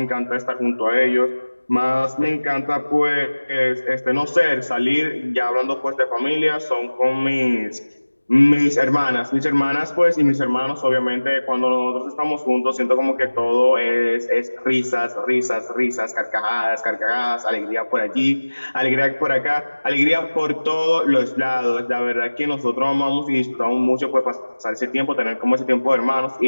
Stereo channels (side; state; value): both; inverted; correlation -1.00